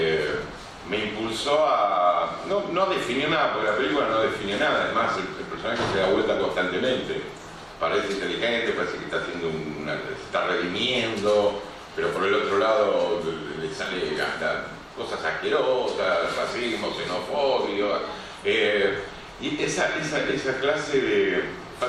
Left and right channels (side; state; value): both; identical; correlation 1.00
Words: me impulsó a no definir nada, porque la película no define nada. Además el personaje se da vuelta constantemente, parece inteligente, parece que está haciendo se está redimiendo, pero por el otro lado le sale cosas asquerosas, racismo, xenofobia, y esa clase de